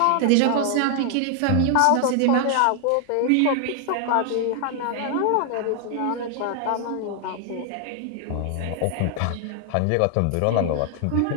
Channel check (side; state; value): both; different; correlation 0.00